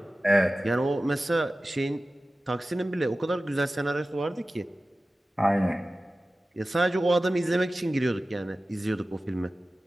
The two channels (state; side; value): normal; both; correlation 0.96